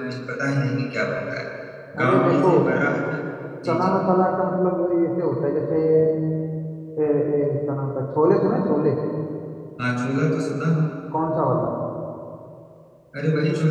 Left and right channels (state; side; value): identical; both; correlation 1.00